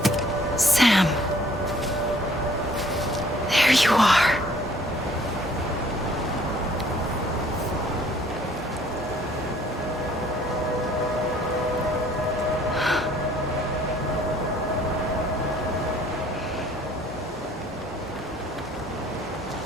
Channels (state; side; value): normal; both; correlation 0.58